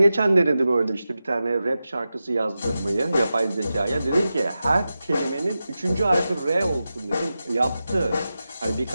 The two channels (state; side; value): inverted; both; correlation -0.93